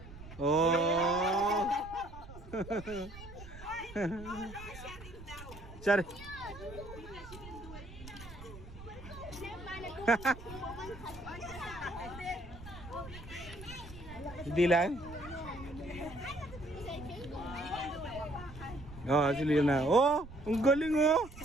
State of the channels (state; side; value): noise; right; rumble, 15 dB below the sound